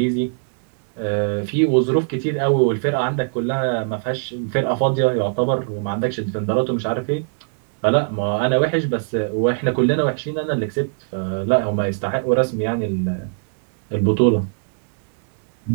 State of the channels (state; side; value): silent; left; digital silence